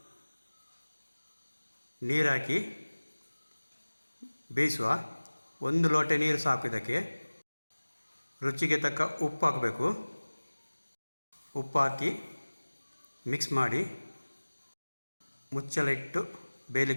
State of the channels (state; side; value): inverted; both; correlation -1.00